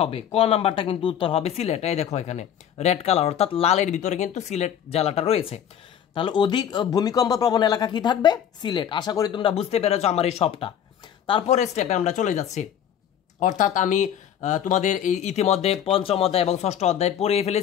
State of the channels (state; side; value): quieter; right; 9.4 dB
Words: হবে, ক নাম্বারটা কিন্তু উত্তর হবে সিলেট। এই দেখো এখানে রেড কালার অর্থাৎ লালের ভিতরে কিন্তু সিলেট জেলাটা রয়েছে। তাহলে অধিক ভূমিকম্প প্রবণ এলাকা কি থাকবে? সিলেট। আশা করি তোমরা বুঝতে পেরেছো আমার এই সবটা। তারপরে স্টেপে আমরা চলে যাচ্ছি, অর্থাৎ আমি তোমাদের এই ইতিমধ্যে পঞ্চম অধ্যায় এবং ষষ্ঠ অধ্যায় পড়িয়ে